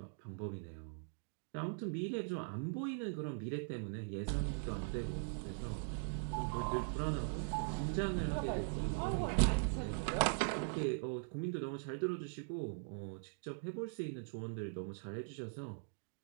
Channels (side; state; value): left; silent; digital silence